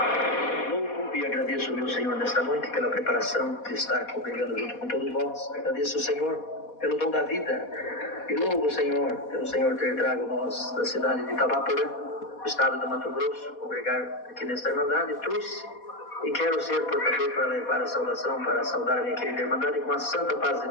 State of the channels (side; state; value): right; late; 4.2 ms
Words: Louvo e agradeço, meu Senhor, nesta noite pela preparação de estar congregando junto com todos vós. Agradeço o Senhor pelo dom da vida e louvo o Senhor pelo Senhor ter trago nós da cidade de Itabaporã, do estado do Mato Grosso, congregar aqui nesta Irmandade. Trouxe e quero ser portador para levar a saudação, para saudar a minha querida Irmandade com a santa paz de